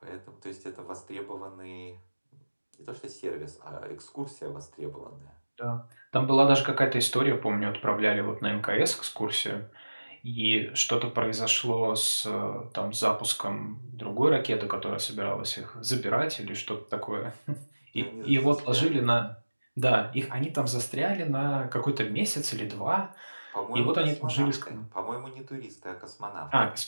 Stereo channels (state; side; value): inverted; both; correlation -1.00